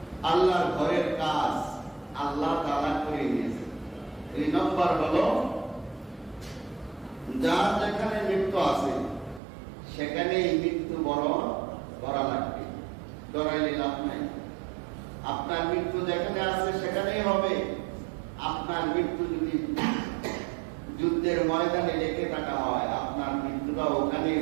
আল্লাহর ঘরের কাজ আল্লাহ তাআলা করে নিয়েছে। এই নম্বর হলো, যার যেখানে মৃত্যু আছে সেখানেই মৃত্যু বরণ করা লাগবে, ডরাইলে লাভ নাই। আপনার মৃত্যু যেখানে আছে সেখানেই হবে। আপনার মৃত্যু যদি যুদ্ধের ময়দানে লেগে থাকা হয়, আপনার মৃত্যুটা ওখানেই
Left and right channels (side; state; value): left; drops out; at 9.4 s